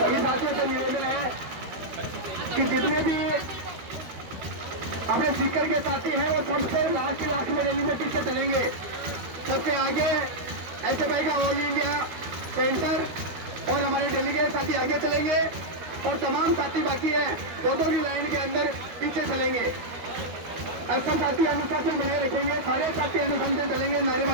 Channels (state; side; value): late; left; 12 ms